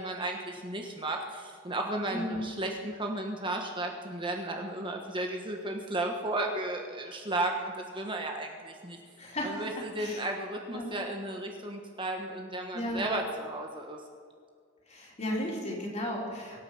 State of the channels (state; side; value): normal; both; correlation 0.30